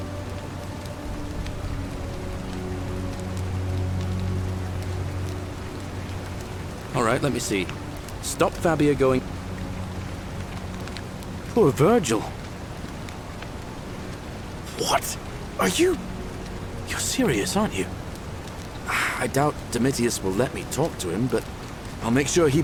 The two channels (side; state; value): both; identical; correlation 1.00